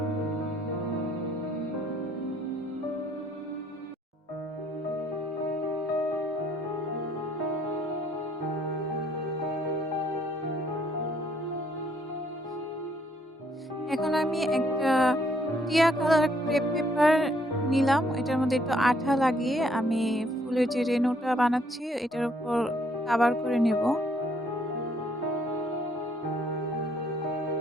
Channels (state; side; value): normal; both; correlation 0.66